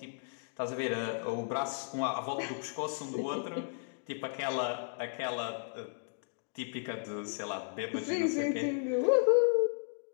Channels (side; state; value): right; silent; digital silence